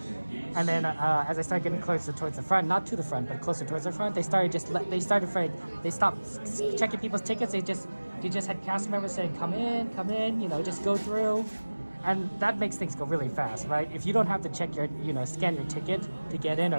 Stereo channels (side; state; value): both; inverted; correlation -1.00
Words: and then as I started getting closer towards the front, not to the front, but closer towards the front, they stopped checking people's tickets. They just had cast members saying, come in, you know, just go through, and that makes things go really fast, right? If you don't have to check scan your ticket to get in